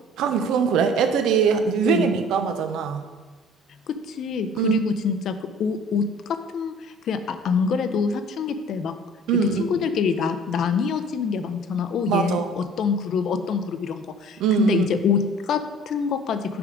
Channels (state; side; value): normal; both; correlation 0.48